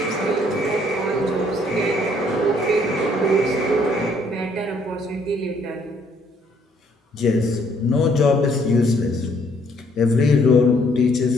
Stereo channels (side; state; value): both; normal; correlation 0.65